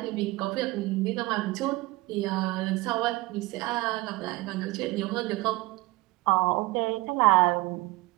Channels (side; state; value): left; quieter; 20.7 dB